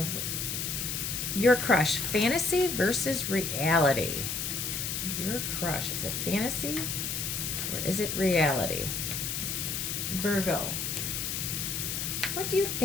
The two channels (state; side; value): noise; left; hiss, 2 dB below the sound